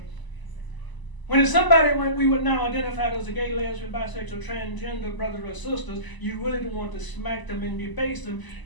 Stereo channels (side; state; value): right; late; 1.0 ms